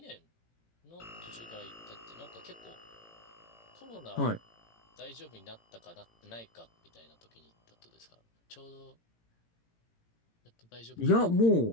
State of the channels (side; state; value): right; late; 18 ms